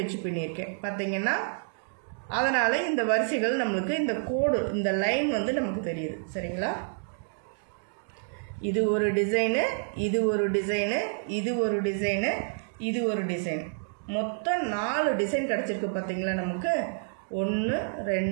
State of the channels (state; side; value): silent; left; digital silence